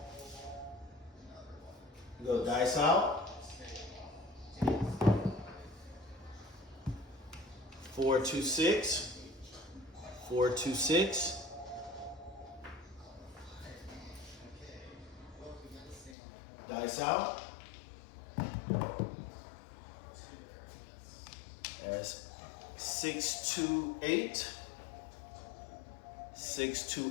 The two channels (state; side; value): drops out; right; at 16.2 s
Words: We go dice out. 426, 426. Dice out. That's 628,